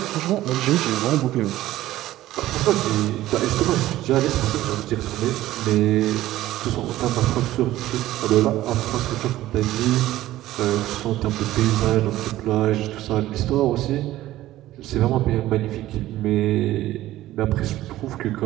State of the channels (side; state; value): left; quieter; 15.1 dB